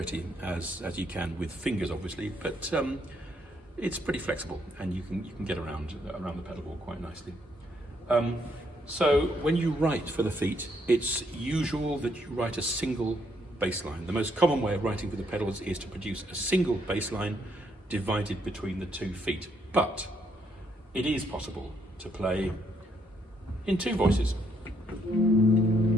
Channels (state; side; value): normal; both; correlation 0.72